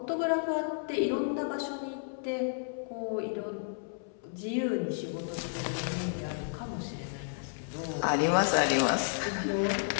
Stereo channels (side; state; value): right; silent; 56 dB below the other